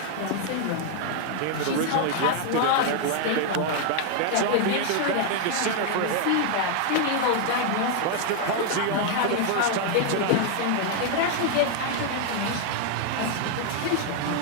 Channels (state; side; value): different; both; correlation 0.00